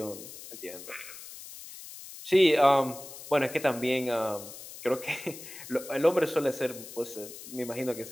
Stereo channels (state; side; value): noise; left; hiss, 14 dB below the sound